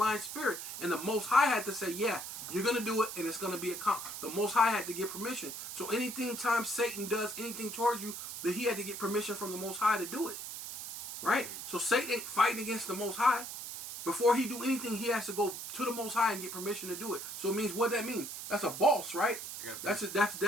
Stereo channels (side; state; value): right; noise; hiss, 8 dB below the sound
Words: spirit." And the Most High had to say, "Yeah, you're gonna do it, and it's gonna be the Most High had to get permission." So time Satan does anything towards you, that he had to get permission from the Most High to do it. Right? So Satan ain't fighting against the Most High. Before he do anything, he has to go to the Most High and get permission to do it. So it means, what that mean? That's a boss, right? That's